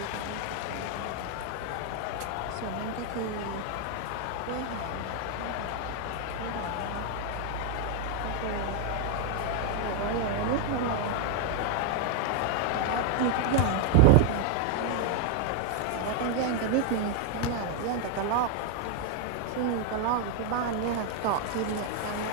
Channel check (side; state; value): both; different; correlation 0.00